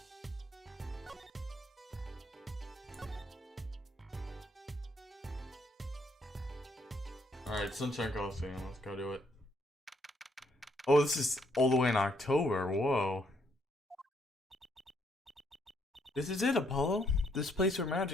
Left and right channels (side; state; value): both; normal; correlation 0.70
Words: Alright, Sunshine Costume. Let's go do it. Oh, this is all the way in October. Whoa. This is it, Apollo. This place where